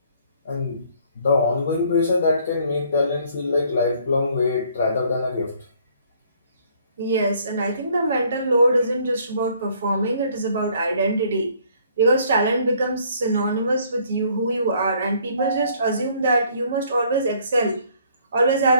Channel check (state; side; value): inverted; both; correlation -0.62